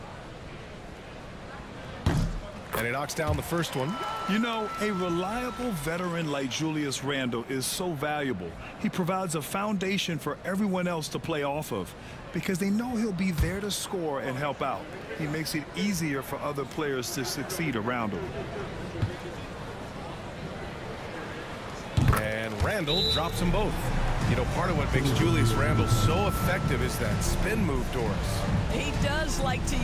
And he knocks down the first one. You know, a reliable veteran like Julius Randle is so valuable. He provides a foundation for everyone else to play off of because they know he'll be there to score and help out. He makes it easier for other players to succeed around him. And Randle drops them both. You know, part of what makes Julius Randle so effective is that spin move, Doris. He does like to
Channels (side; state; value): both; identical; correlation 1.00